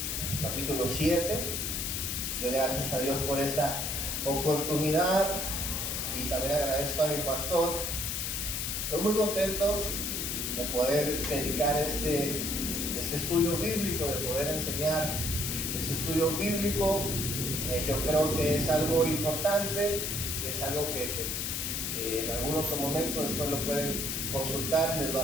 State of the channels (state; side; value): noise; left; hiss, 1 dB below the sound